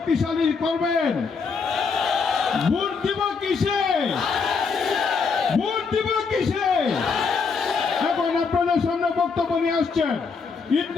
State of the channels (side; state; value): right; quieter; 5.2 dB